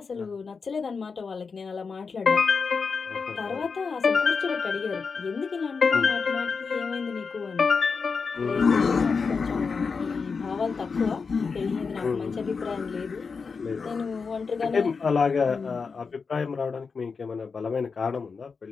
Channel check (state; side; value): quieter; right; 5.1 dB